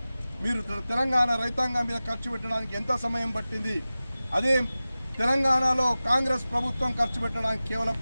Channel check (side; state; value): both; inverted; correlation -0.96